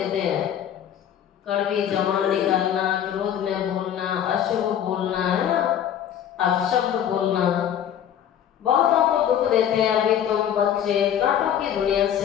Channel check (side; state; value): right; quieter; 9.8 dB